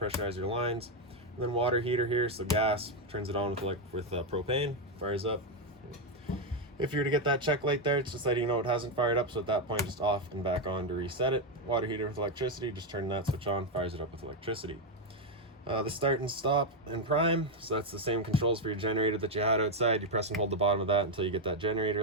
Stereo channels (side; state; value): both; normal; correlation 0.04